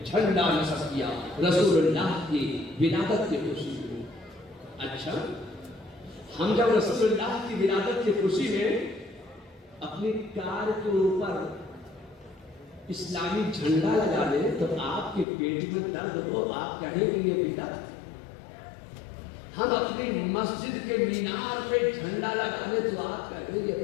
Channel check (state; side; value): drops out; right; at 15.2 s